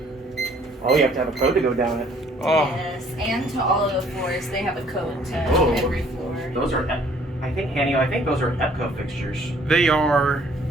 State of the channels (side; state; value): both; normal; correlation 0.59